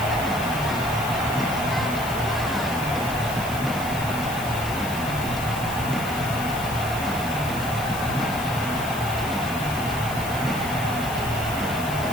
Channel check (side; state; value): left; noise; hiss, 11 dB below the sound